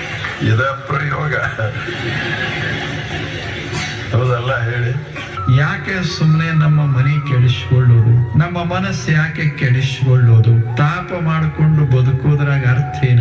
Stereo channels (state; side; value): identical; both; correlation 1.00